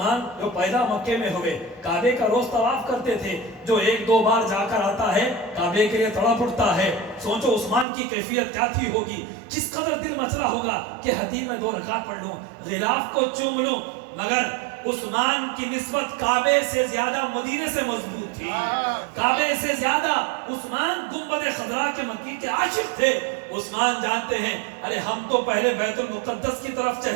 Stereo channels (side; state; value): left; drops out; at 7.9 s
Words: جو پیدا مکے میں ہوئے، کعبے کا روز طواف کرتے تھے، جو ایک دو بار جا کر آتا ہے کعبے کے لیے تڑپ اٹھتا ہے۔ سوچو عثمان کی کیفیت کیا تھی ہوگی، کس قدر دل مچلا ہوگا کہ حتیم میں 2 رکعت پڑھ لوں، غلاف کو چوم لوں۔ مگر عثمان کی نسبت کعبے سے زیادہ مدینے سے مضبوط تھی، کعبے سے زیادہ عثمان گنبد خضرا کے مکی کے عاشق تھے۔ عثمان جانتے ہیں ارے ہم تو پہلے بیت المقدس کی طرف